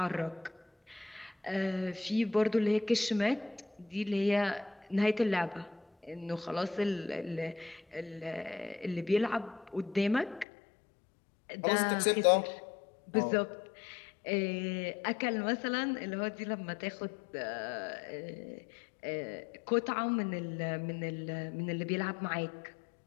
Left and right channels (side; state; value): right; drops out; at 10.5 s